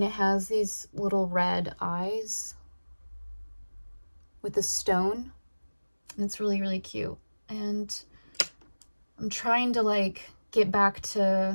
it has these little red eyes. with a stone. And it's really, really cute. And I'm trying to like get back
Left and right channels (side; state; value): both; inverted; correlation -1.00